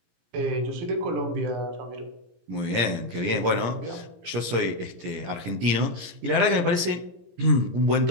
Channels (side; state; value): left; late; 17 ms